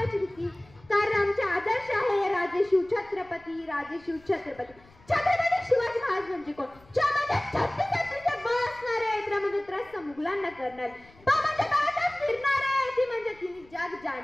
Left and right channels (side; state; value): left; noise; rumble, 27 dB below the sound